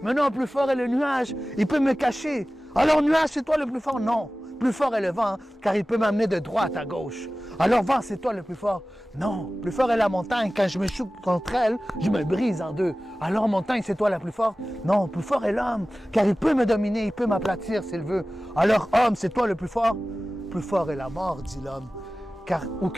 Mais non, plus fort est le nuage. Il peut me cacher. Alors nuage, c'est toi le plus fort. Non, plus fort est le vent, car il peut m'amener de droite à gauche. Alors vent, c'est toi le plus fort. Non, plus fort est la montagne. Quand je me choque contre elle, je me brise en deux. Alors montagne, c'est toi la plus forte. Non, plus fort est l'homme, car il peut me dominer, il peut m'aplatir s'il veut. Alors homme, c'est toi le plus fort. Plus fort est la mort, dit l'homme, car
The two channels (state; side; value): normal; both; correlation 0.96